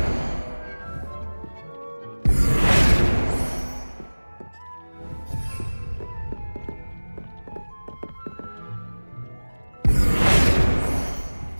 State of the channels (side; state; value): both; inverted; correlation -1.00